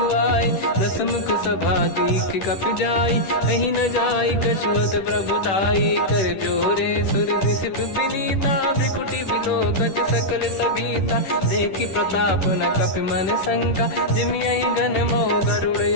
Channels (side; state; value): right; late; 10 ms